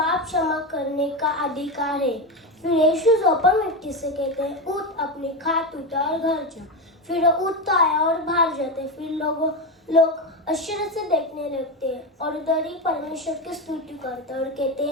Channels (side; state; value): both; normal; correlation 0.15